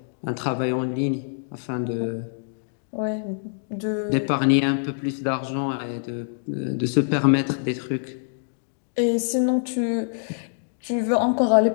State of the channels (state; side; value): silent; right; digital silence